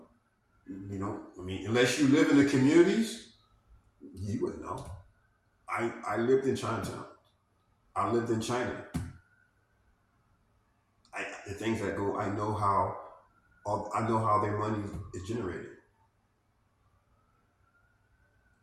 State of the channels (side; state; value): both; identical; correlation 1.00